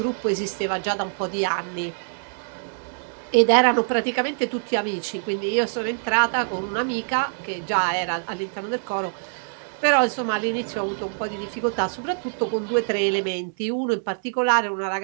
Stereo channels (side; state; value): left; silent; 62 dB below the other